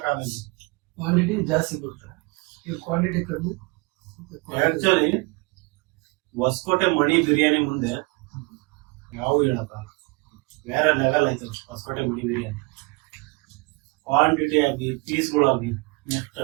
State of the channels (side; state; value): left; quieter; 26.8 dB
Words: ಕ್ವಾಂಟಿಟಿ ಜಾಸ್ತಿ ಕೊಡ್ತಾರೆ, ಈಗ ಕ್ವಾಂಟಿಟಿ ಕಡಿಮೆ. ಆಕ್ಚುಲಿ ಹೊಸಕೋಟೆ ಮಣಿ ಬಿರಿಯಾನಿ ಮುಂದೆ ಯಾವ ಹೇಳಕ್ಕಾಗಲ್ಲ. ಬೇರೆ ಲೆವೆಲ್ ಆಯ್ತು ಹೊಸಕೋಟೆ ಮಣಿ ಬಿರಿಯಾನಿ. ಕ್ವಾಂಟಿಟಿ ಆಗಿ, ಪೀಸ್ಗಳಾಗಿ, ನೆಕ್ಸ್ಟ್